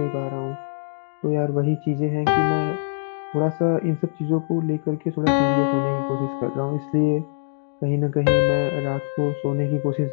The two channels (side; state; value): right; silent; digital silence